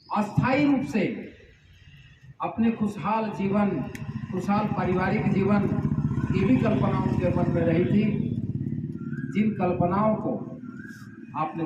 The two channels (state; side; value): identical; both; correlation 1.00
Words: अस्थायी रूप से अपने खुशहाल जीवन, खुशहाल पारिवारिक जीवन की भी कल्पना उनके मन में रही थी, जिन कल्पनाओं को